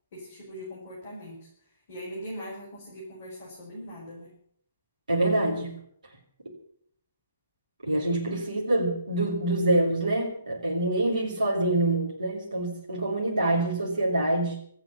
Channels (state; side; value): inverted; both; correlation -0.66